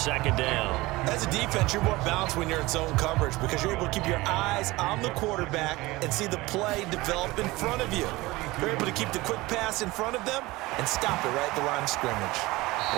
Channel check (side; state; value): left; quieter; 20.5 dB